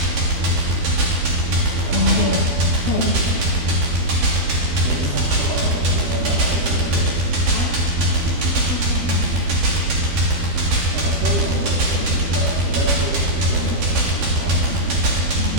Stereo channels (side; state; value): left; late; 13 ms